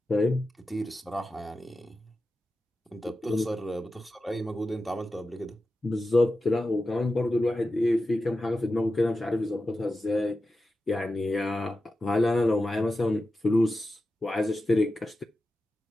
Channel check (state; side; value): normal; both; correlation 0.92